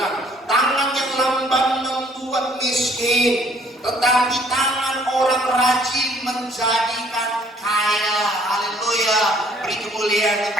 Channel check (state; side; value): normal; both; correlation 0.60